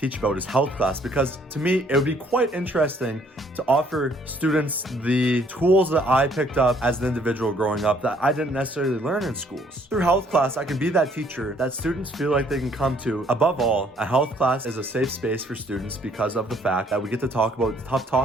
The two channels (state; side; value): normal; both; correlation 0.63